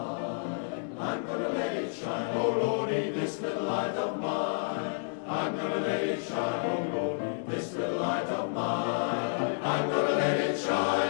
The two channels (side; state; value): right; silent; digital silence